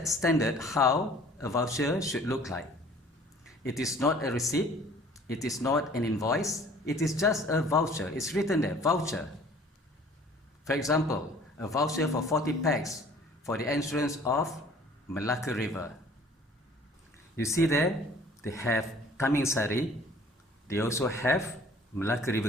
standard how a voucher should look like. It is not a receipt. It is not an invoice. It is just a voucher. It's written there, voucher. For example, a voucher for 40 packs for the entrance of Malacca River. You see there, they have Tamingsari. They also have Malacca River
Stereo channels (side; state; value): both; normal; correlation 0.52